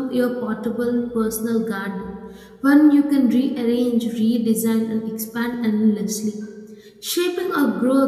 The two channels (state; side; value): identical; both; correlation 1.00